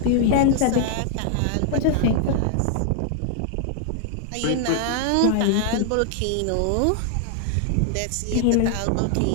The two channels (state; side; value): different; both; correlation 0.00